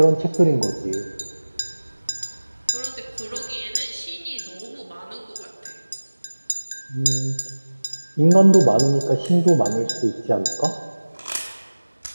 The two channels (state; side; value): inverted; both; correlation -1.00